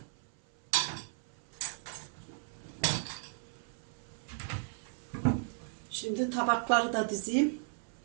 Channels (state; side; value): silent; left; 54 dB below the other